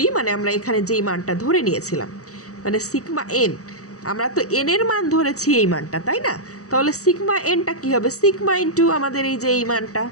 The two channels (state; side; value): late; right; 0.66 ms